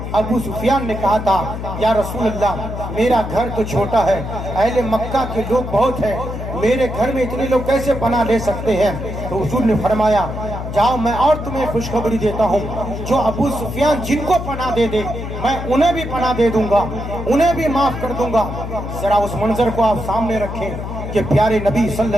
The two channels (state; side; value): noise; left; hum, 7 dB below the sound